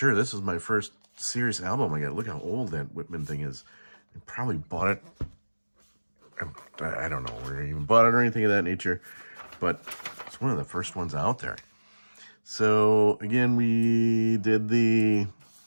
this is my first series album I got. Look how old that Whitman thing is. I probably bought it. I don't know where I even bought it or anything of that nature, but it's one of the first ones out there. So again, we did the,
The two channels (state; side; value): inverted; both; correlation -1.00